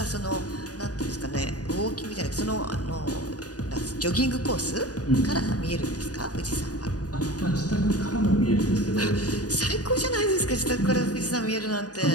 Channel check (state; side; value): late; right; 0.68 ms